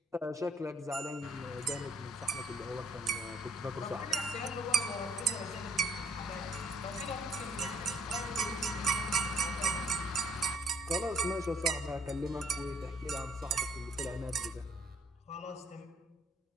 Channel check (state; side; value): normal; both; correlation 0.64